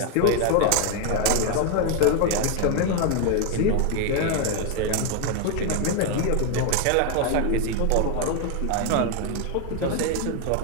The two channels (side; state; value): both; different; correlation 0.01